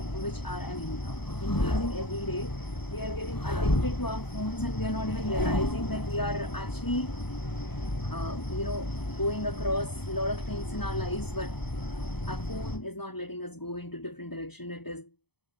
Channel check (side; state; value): right; late; 0.97 ms